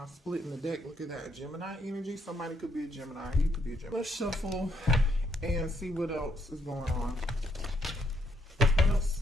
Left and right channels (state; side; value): normal; both; correlation 0.72